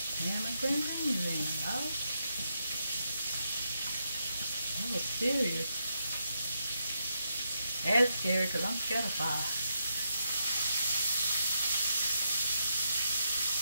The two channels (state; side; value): inverted; both; correlation -0.81